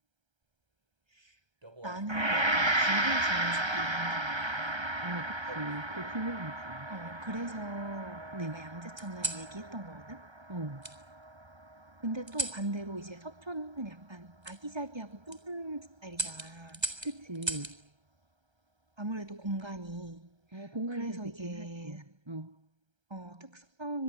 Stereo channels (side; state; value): left; late; 1.3 ms